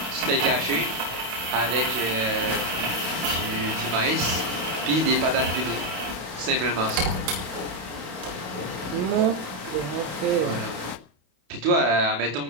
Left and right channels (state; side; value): late; left; 30 ms